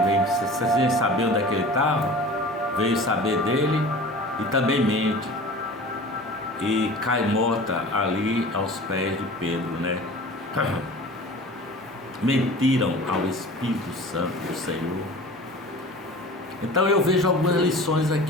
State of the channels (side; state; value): both; normal; correlation 0.39